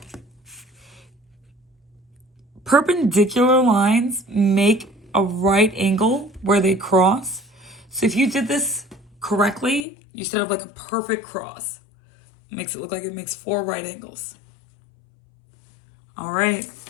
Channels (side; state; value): right; drops out; at 9.9 s